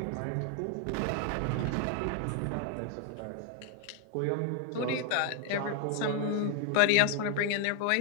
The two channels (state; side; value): different; both; correlation 0.00